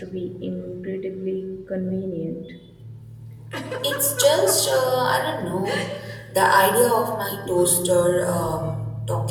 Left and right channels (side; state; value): both; identical; correlation 1.00